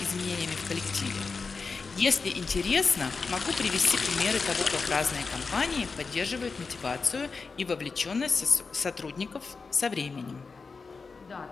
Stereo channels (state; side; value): quieter; right; 4.6 dB